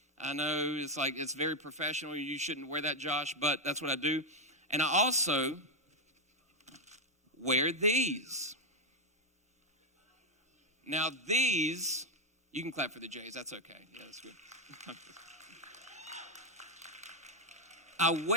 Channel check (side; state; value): both; normal; correlation 0.04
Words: I know it's very professional. You shouldn't wear that, Josh, but that's what I do. And I also wear these. Now these, you can clap for the J's. That's okay. Yeah, that's good. I